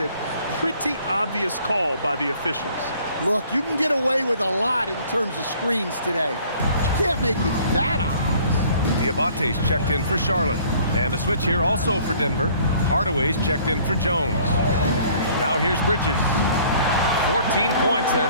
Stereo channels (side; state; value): both; inverted; correlation -0.56